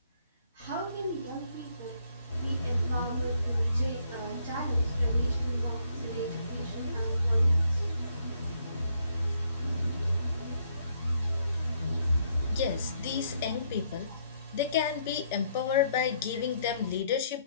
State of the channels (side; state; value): both; inverted; correlation -0.70